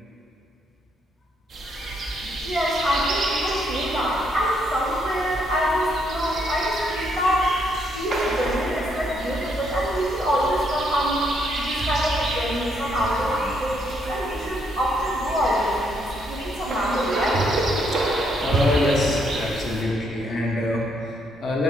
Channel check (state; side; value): normal; both; correlation 0.73